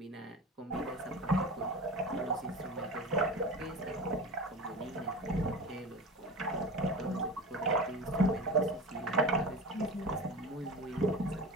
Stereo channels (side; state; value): both; normal; correlation 0.31